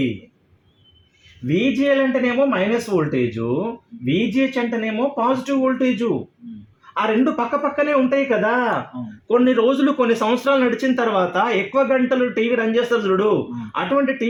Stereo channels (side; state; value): both; identical; correlation 1.00